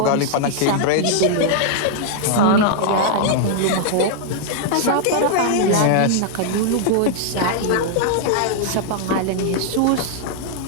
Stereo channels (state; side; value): different; both; correlation -0.01